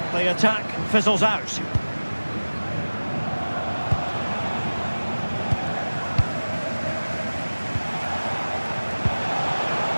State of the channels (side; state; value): both; inverted; correlation -1.00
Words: the attack fizzles out.